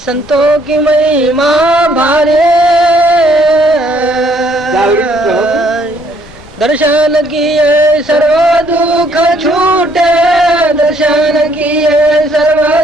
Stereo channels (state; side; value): noise; left; rumble, 22 dB below the sound